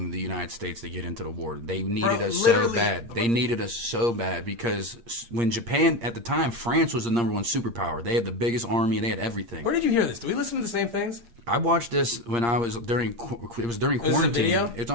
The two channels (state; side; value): late; left; 8.6 ms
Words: the United States to get into the war. They needed us so bad. They needed us so bad because when Japan at the time, France was the number one superpower. They had the biggest army. They had everything. Where did you hear this? Do we listen to the same things? I watched this when I was during quarantine. video? It's